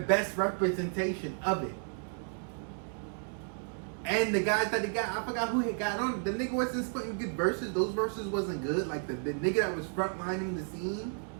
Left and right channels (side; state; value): left; silent; 56 dB below the other